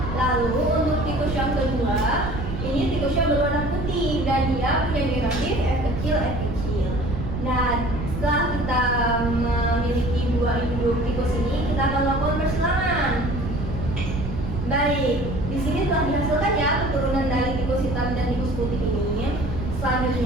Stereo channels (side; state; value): right; noise; rumble, 5 dB below the sound